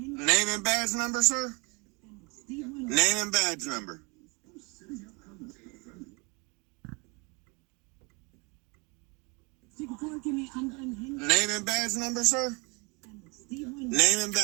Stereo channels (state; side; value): quieter; left; 25.3 dB